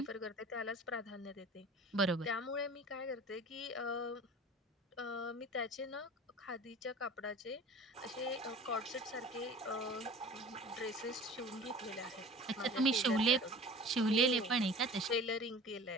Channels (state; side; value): normal; both; correlation 0.41